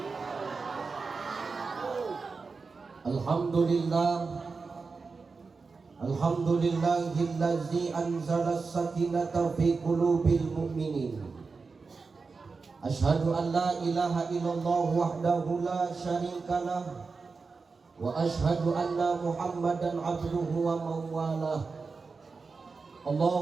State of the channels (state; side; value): quieter; left; 4.5 dB